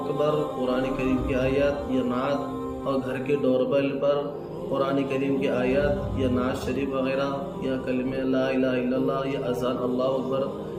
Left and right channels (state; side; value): identical; both; correlation 1.00